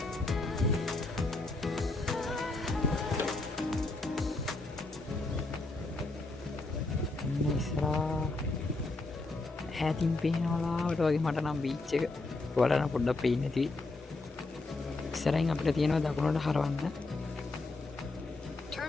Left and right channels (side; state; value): right; quieter; 3.2 dB